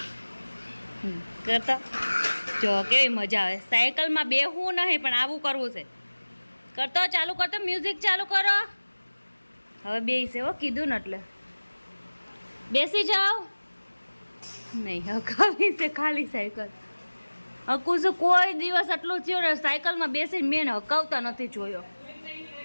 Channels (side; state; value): both; inverted; correlation -1.00